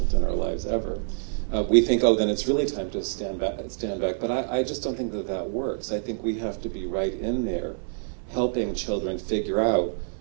in our lives, ever. We think, oh, then it's really time to stand back. But I just don't think that that works. I think we have to be right in there helping children figure out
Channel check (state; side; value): silent; left; 58 dB below the other